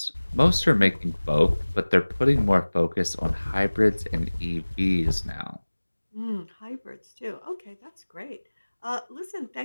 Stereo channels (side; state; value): both; inverted; correlation -1.00